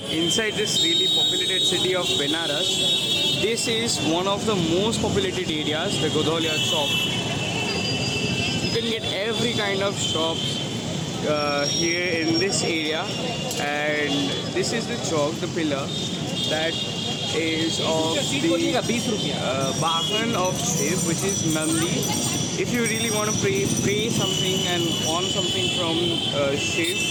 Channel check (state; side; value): identical; both; correlation 1.00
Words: Inside this really populated city of Benares, this is one of the most populated areas, the Godholiya Chowk. You can get every kind of shop here in this area, and this is the chowk, the pillar that is of the Vahan of Shiv, which is Nandi. If you really want to pray something and want something from Shiv,